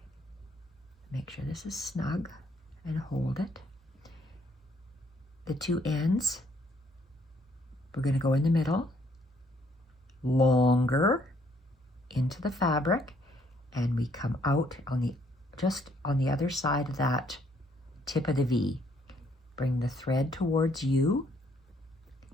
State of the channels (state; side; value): normal; both; correlation 0.67